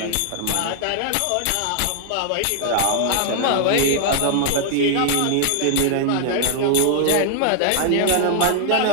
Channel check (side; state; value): both; different; correlation 0.00